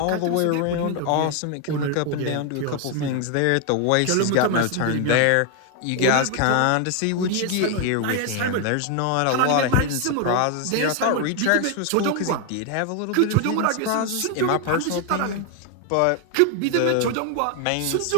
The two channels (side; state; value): both; different; correlation 0.01